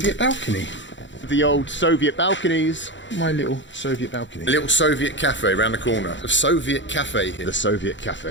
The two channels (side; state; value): right; late; 0.54 ms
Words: balcony. The old Soviet balconies. My little Soviet balcony. A little Soviet cafe around the corner. A Soviet cafe here. The Soviet